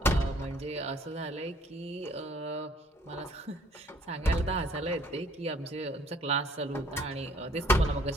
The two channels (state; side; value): normal; both; correlation 0.59